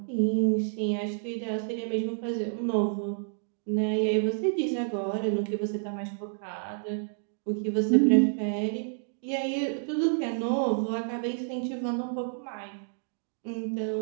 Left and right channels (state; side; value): silent; left; digital silence